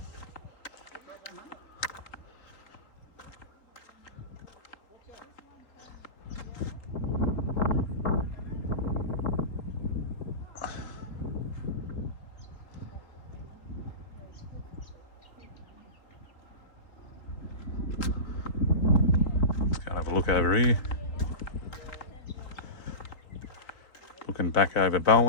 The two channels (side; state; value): right; late; 3.8 ms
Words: Let's go and have a look over here. Looking back over